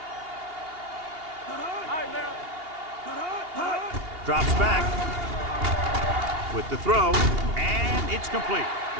All right, now. Drops back with the throw, and it's complete.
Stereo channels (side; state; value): left; late; 2.8 ms